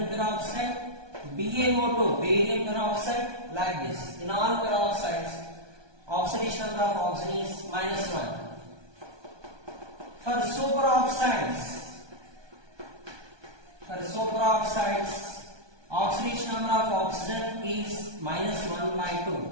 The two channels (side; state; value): left; late; 1.2 ms